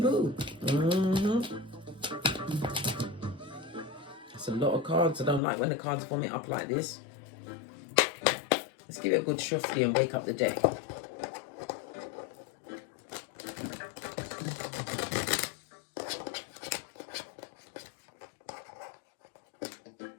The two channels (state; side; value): drops out; right; at 5.4 s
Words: boo. That's a lot of cards. I don't like when the cards form it up like this. Let's give it a good shuffle and wake up the deck.